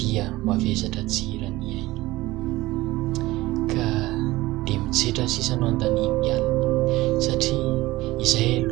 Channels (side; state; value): left; quieter; 18.7 dB